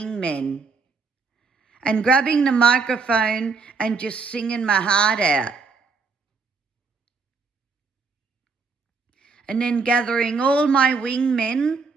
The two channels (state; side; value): quieter; left; 4.7 dB